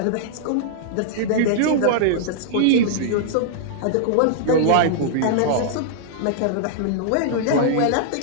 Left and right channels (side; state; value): both; different; correlation -0.01